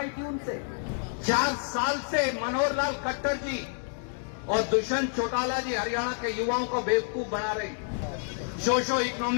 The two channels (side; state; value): right; silent; 59 dB below the other